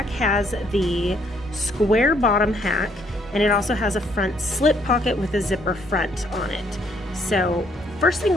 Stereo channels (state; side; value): normal; both; correlation 0.67